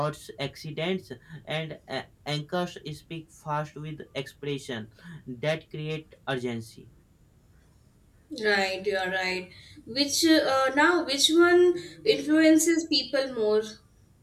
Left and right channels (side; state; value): both; identical; correlation 1.00